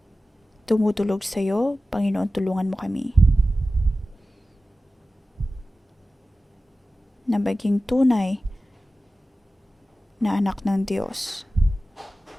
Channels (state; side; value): normal; both; correlation 0.95